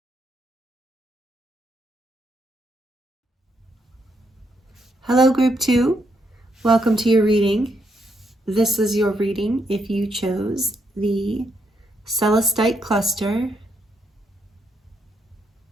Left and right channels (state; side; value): normal; both; correlation 0.77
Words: Hello, Group 2. Welcome to your reading. This is your reading if you chose the Celestite cluster.